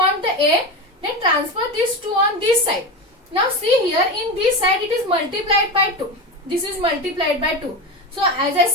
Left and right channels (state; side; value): normal; both; correlation 0.20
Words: the A, then transfer this 2 on this side. Now see here, in this side it is multiplied by 2. This is multiplied by 2. So as I